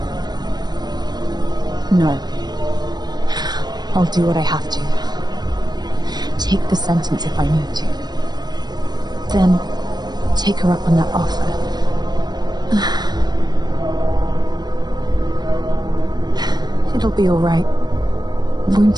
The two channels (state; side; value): late; left; 0.20 ms